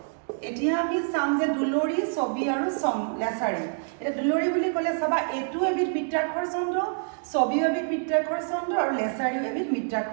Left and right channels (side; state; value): left; silent; 60 dB below the other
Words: এতিয়া আমি চাম যে দুলৰি, ছবি আৰু লেছাৰী। এতিয়া দুলৰি বুলি ক'লে চাবা, এইটো এবিধ মিত্ৰাক্ষৰ ছন্দ, ছবিও এবিধ মিত্ৰাক্ষৰ ছন্দ আৰু লেছাৰীও এবিধ